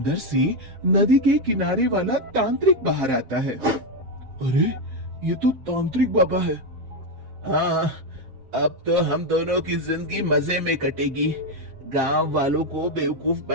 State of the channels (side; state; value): left; late; 7.6 ms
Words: से नदी के किनारे वाला तांत्रिक बाहर आता है। अरे, ये तो तांत्रिक बाबा है। हाँ, अब तो हम दोनों की जिंदगी मजे में कटेगी। गांव वालों को बेवकूफ